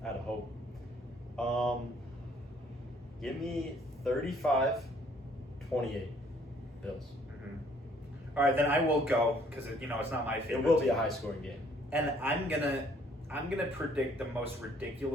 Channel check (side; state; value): both; normal; correlation 0.62